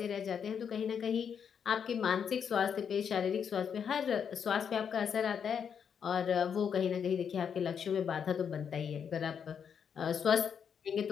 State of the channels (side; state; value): right; quieter; 7.4 dB